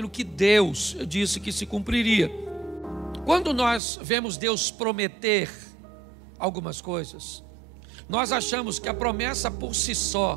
que Deus disse que se cumpriria. Quando nós vemos Deus prometer algumas coisas, nós achamos que a promessa por si só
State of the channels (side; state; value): left; drops out; at 3.8 s